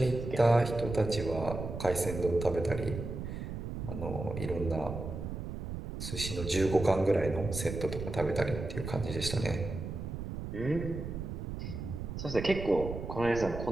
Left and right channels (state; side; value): noise; right; rumble, 6 dB below the sound